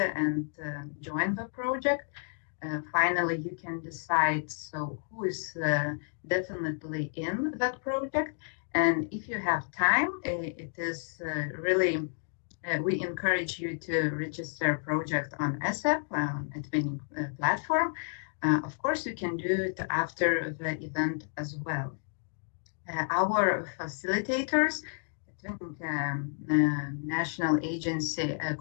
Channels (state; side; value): silent; right; digital silence